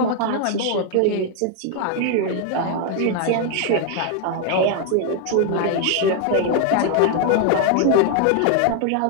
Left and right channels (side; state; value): both; different; correlation 0.00